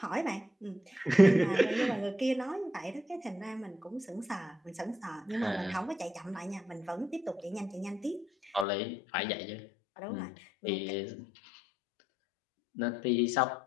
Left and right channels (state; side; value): drops out; right; at 8.7 s